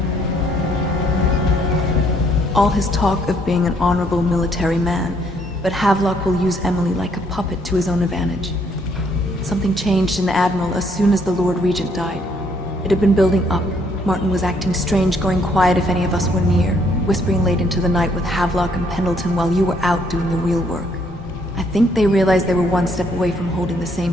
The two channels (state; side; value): normal; both; correlation 0.68